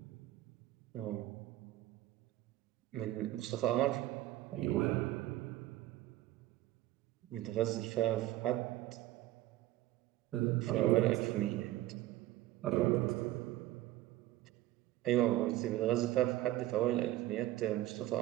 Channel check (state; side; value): quieter; left; 15.4 dB